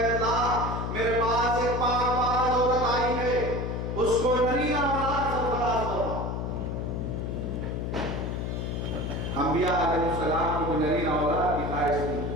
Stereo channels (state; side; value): noise; left; hum, 3 dB below the sound